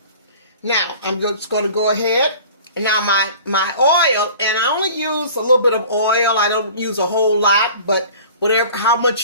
Now, I'm just going to go ahead. Now, my oil, and I only use a little bit of oil. I don't use a whole lot, but whatever, how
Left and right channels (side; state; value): both; inverted; correlation -0.44